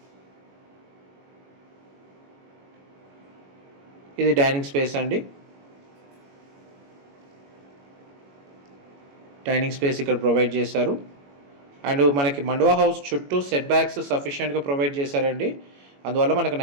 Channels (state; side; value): late; left; 21 ms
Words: ఇది డైనింగ్ స్పేస్ అండి. డైనింగ్ స్పేస్ ఇక్కడ ప్రొవైడ్ చేశారు. అండ్ మనకి మండువా హౌస్ చుట్టూ సెట్ బ్యాక్స్ సఫిషియెంట్గా ప్రొవైడ్ చేశారండి. అందువల్ల మనకు